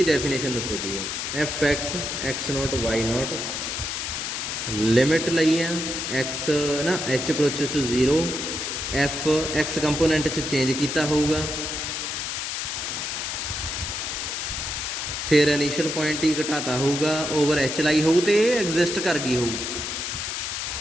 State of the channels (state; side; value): noise; left; hiss, 3 dB below the sound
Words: ਡੈਫੀਨੇਸ਼ਨ ਦੱਸੋ ਕੀ ਹੈ। fx x0 y0 ਲਿਮਿਟ ਲਈ ਆ, x ਨਾ h approaches to 0, f x component 'ਚ ਚੇਂਜ ਕੀਤਾ ਹੋਊਗਾ, ਫਿਰ ਇਨੀਸ਼ੀਅਲ ਪੁਆਇੰਟ ਹੀ ਘਟਾਤਾ ਹੋਊਗਾ, ਓਵਰ h ਲਾਈ ਹੋਊ ਤੇ ਇਹ ਐਗਜ਼ਿਸਟ ਕਰ ਗਈ ਹੋਊ।